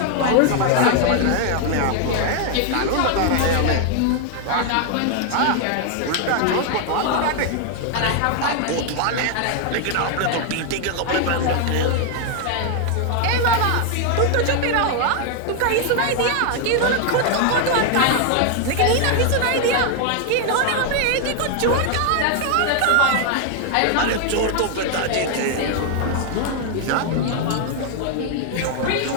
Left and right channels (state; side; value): different; both; correlation 0.00